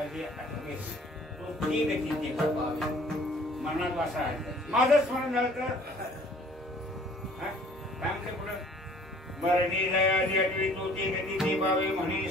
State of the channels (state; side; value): normal; both; correlation 0.54